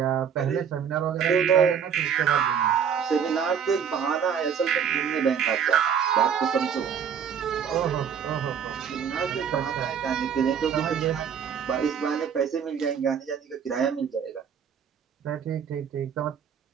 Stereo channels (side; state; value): left; quieter; 7.6 dB